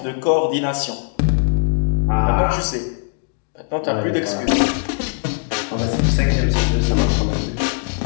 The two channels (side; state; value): right; silent; digital silence